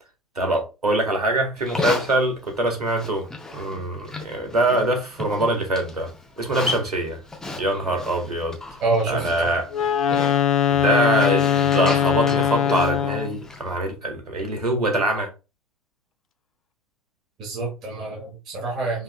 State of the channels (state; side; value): normal; both; correlation 0.37